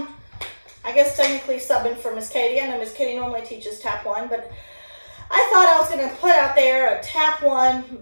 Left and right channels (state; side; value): inverted; both; correlation -1.00